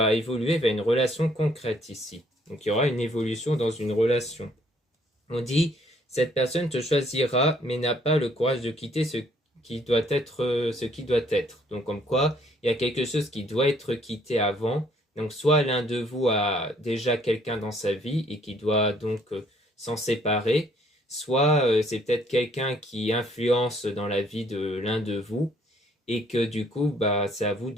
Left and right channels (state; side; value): normal; both; correlation 0.64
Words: évoluer vers une relation concrète ici. Donc il y aura une évolution dans une relation. On dit cette personne te choisira mais n'a pas le courage de quitter ce qui doit être. Donc comme quoi, il y a quelque chose qui doit être quitté avant. Donc soit l'un de vous a déjà quelqu'un dans sa vie et qui doit donc s'en séparer, soit c'est peut-être quelqu'un qui influence dans la vie de l'un de vous et que du coup, c'est à vous